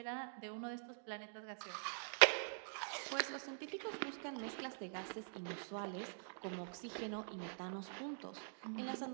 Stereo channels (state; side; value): silent; left; digital silence